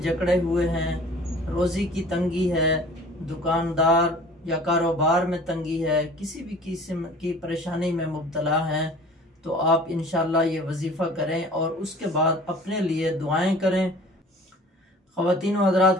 जकड़े हुए हैं, रोज़ी की तंगी है, दुकानदार या कारोबार में तंगी है, किसी भी किस्म की परेशानी में मुब्तला हैं, तो आप इंशाअल्लाह ये वजीफ़ा करें और उसके बाद अपने लिए दुआएं करें। ख़वातीन व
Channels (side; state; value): both; normal; correlation 0.47